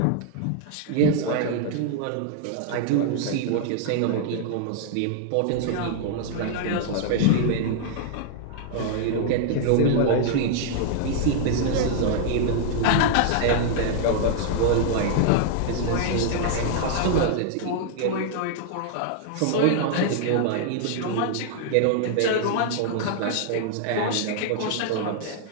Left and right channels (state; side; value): different; both; correlation -0.01